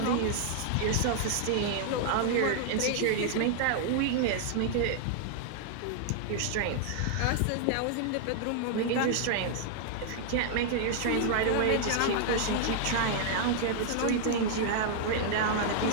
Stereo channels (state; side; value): different; both; correlation -0.01